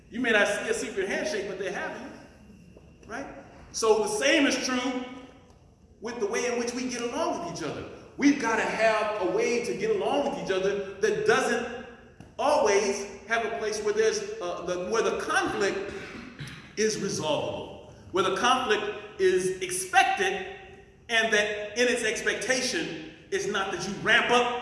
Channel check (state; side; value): identical; both; correlation 1.00